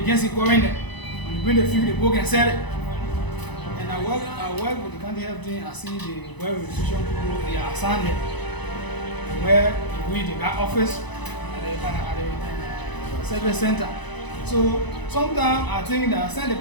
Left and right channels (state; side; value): late; right; 1.0 ms